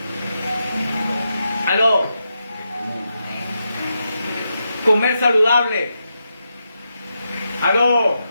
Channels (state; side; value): inverted; both; correlation -0.86